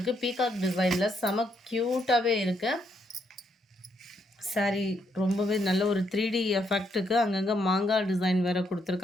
பீகாக் டிசைனில் செம க்யூட்டாகவே இருக்குது. சாரீ ரொம்பவே நல்ல ஒரு 3D எஃபெக்ட்டுக்கு அங்கங்கே மாங்காய் டிசைன் வேறு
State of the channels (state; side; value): normal; both; correlation 0.75